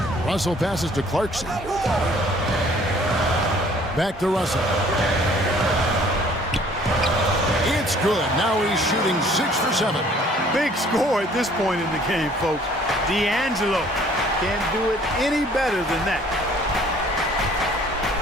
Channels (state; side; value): normal; both; correlation 0.56